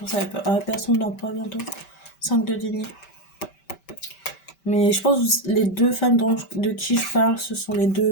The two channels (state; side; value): late; right; 5.1 ms